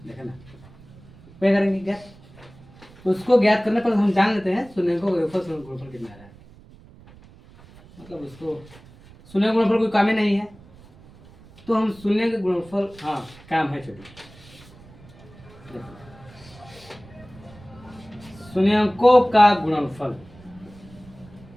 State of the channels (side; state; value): right; noise; rumble, 23 dB below the sound